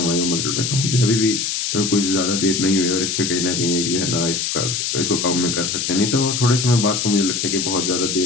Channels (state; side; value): noise; left; hiss, 1 dB below the sound